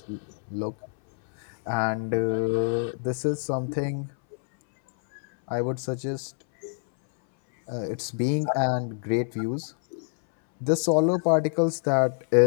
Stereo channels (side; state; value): right; silent; 61 dB below the other